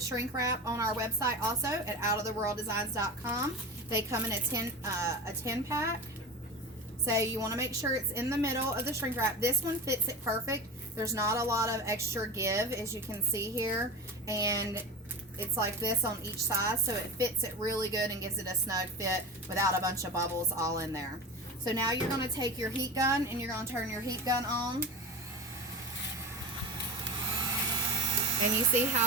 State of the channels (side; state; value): both; normal; correlation 0.27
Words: wrap on our website also at outoftheworlddesigns.com. They come in a 10 pack. So you want to make sure it's in the middle of the shrink wrap. This one fits it perfect. There's not a lot of extra give, as you can see here. And it's like this on each side, so it fits it really good and gives it a snug fit without a bunch of bubbles all in there. So now you're going to take your heat gun and you're going to turn your heat gun on. And you see